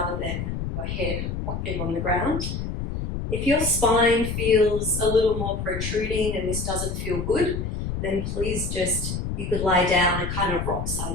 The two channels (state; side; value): noise; left; rumble, 4 dB below the sound